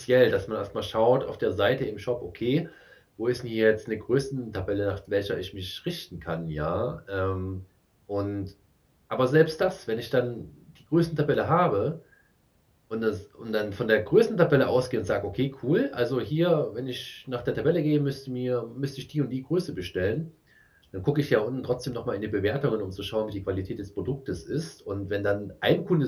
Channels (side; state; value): both; identical; correlation 1.00